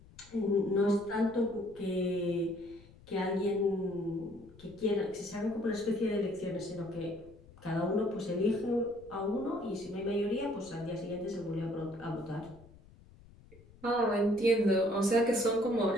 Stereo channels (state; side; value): noise; left; rumble, 23 dB below the sound